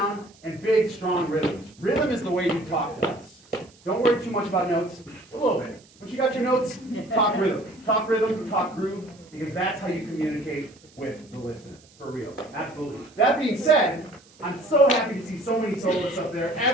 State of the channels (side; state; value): right; noise; hiss, 27 dB below the sound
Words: and big, strong rhythms. Rhythm is the way you talk to us. Don't worry too much about notes, a little bit. Once you got your notes, talk rhythm. Talk rhythm, talk groove, because that's how you communicate with the listener, for real. Absolutely. That being said, I'm so happy to see so many soloists up there.